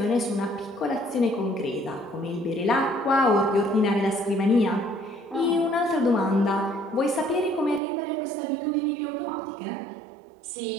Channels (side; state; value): left; drops out; at 7.8 s